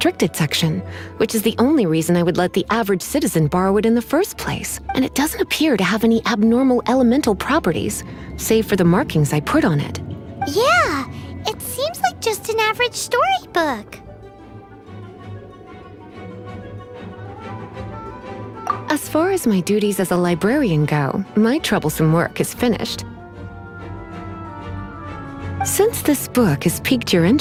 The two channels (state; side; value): identical; both; correlation 1.00